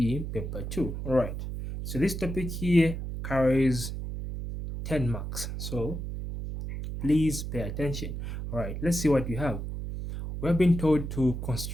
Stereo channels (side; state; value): right; noise; hum, 6 dB below the sound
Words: paper 2. Alright, so this topic here carries 10 marks, so please pay attention. Alright, let's see what you have. We're being told to